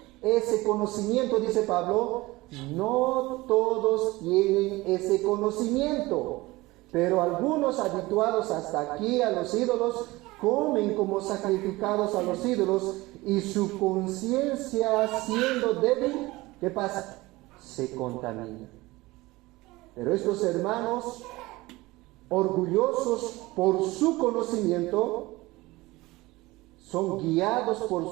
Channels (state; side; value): quieter; left; 20.4 dB